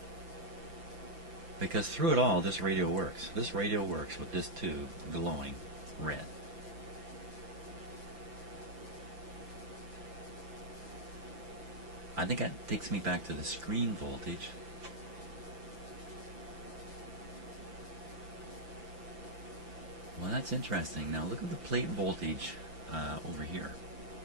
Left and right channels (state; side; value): late; left; 5.9 ms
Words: Because through it all, this radio works. This radio works with this tube glowing red. I think that takes me back to the screen voltage. Well, that's interesting. Now look at the plate voltage over here.